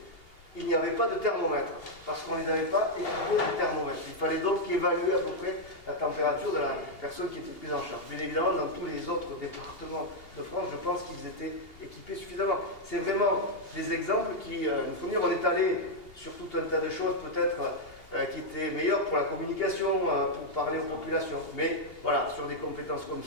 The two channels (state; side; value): late; right; 2.8 ms